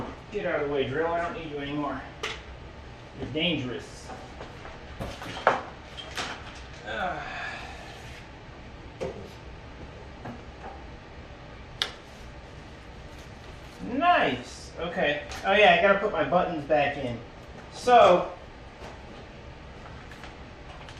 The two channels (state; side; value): identical; both; correlation 1.00